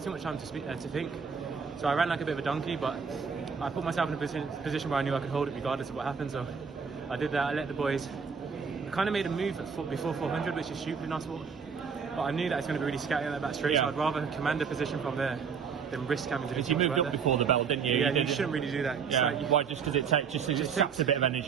too much time to think. So I ran like a bit of a donkey, but I put myself in a position where I knew I could hold it regardless of what happened. So I did that. I let the boys. I kind of made a move before 400, which is stupid in our sport. But I knew that it's going to be really scatty on that back straight, so I'd rather command a position from there than risk having to do. You moved up before the bell, didn't you? Yeah, you shouldn't really do that. Yeah. Like why? Just because it saps a bit of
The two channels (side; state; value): left; quieter; 6.2 dB